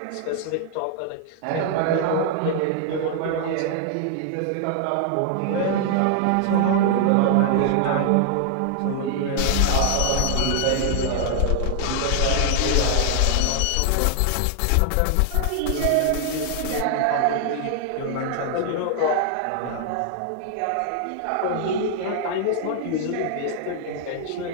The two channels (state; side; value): different; both; correlation 0.00